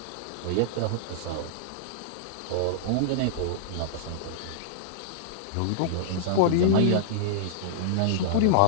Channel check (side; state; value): both; different; correlation -0.02